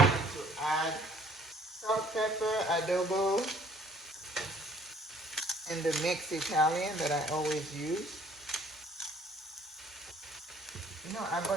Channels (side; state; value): both; normal; correlation 0.58